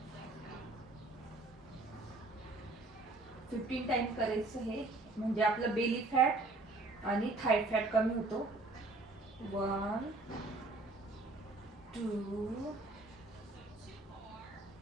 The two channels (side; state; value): left; quieter; 3.1 dB